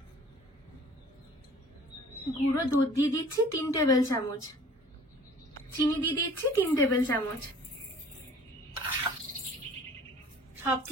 গুঁড়ো দুধ দিয়ে দিচ্ছি 3 টেবিল চামচ। চিনি দিয়ে দিচ্ছি 3 টেবিল চামচ।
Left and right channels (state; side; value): normal; both; correlation 0.49